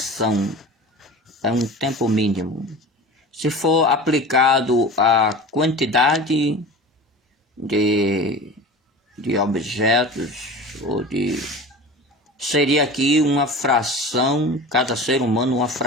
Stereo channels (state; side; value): normal; both; correlation 0.35